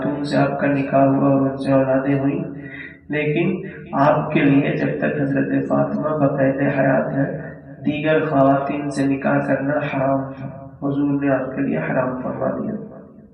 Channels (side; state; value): both; identical; correlation 1.00